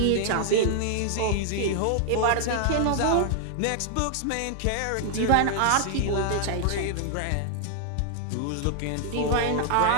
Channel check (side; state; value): both; different; correlation 0.00